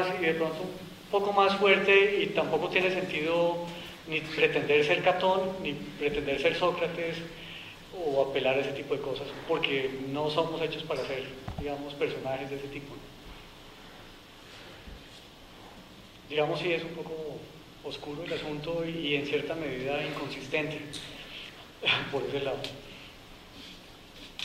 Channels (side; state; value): both; identical; correlation 1.00